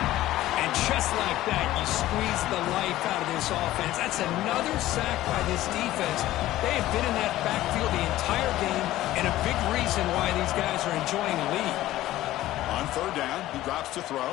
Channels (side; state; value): right; quieter; 15.2 dB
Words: And just like that, you squeeze the life out of this offense. That's another sack by this defense. They have been in that backfield the entire game, and a big reason why these guys are enjoying a lead. On third down, he drops to throw.